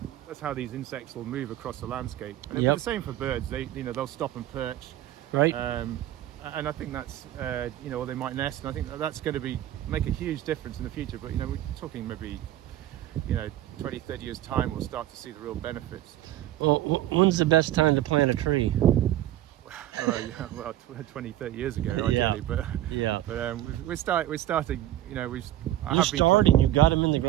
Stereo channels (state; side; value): quieter; left; 13.6 dB